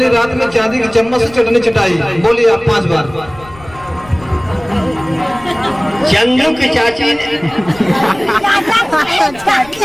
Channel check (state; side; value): noise; left; rumble, 21 dB below the sound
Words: रात में चांदी की चम्मच से चटनी चटाई। बोलिए आप 5 बार। चंदू की चाची